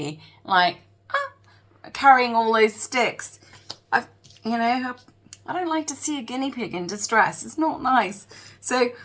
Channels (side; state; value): both; identical; correlation 1.00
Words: like carrying all those sticks. I don't like to see a guinea pig in distress. It's not nice. So